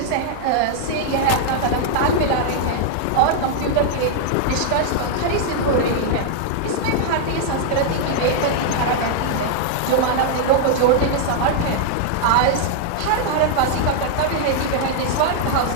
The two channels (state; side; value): different; both; correlation -0.01